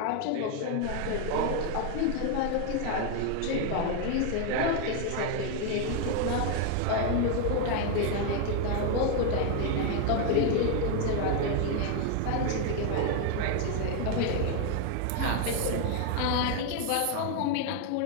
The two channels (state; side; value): different; both; correlation 0.01